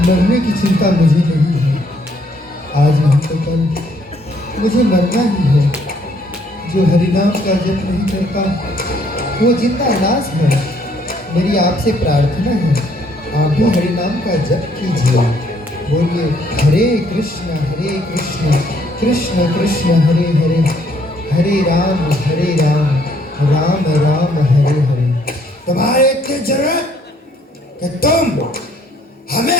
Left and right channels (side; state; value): both; normal; correlation 0.66